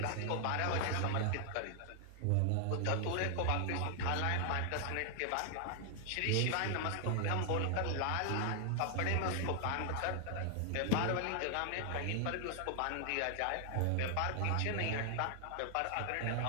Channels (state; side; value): different; both; correlation 0.00